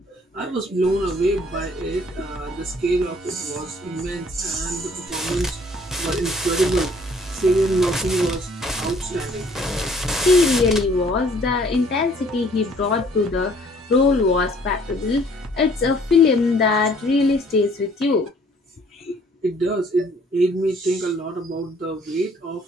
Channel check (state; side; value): normal; both; correlation 0.59